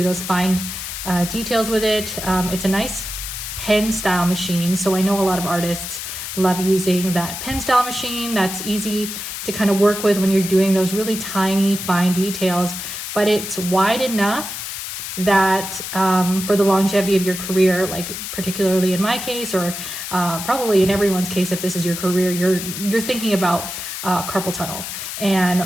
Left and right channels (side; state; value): left; noise; hiss, 7 dB below the sound